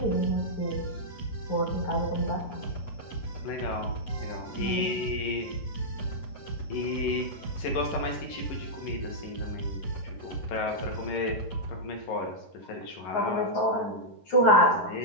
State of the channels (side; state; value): right; late; 11 ms